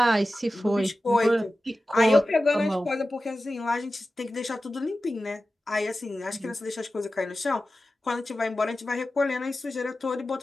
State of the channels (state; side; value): normal; both; correlation 0.94